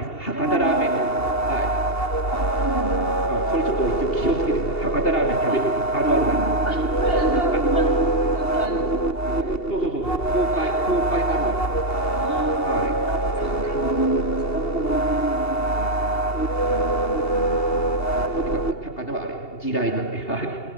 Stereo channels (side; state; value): right; late; 2.8 ms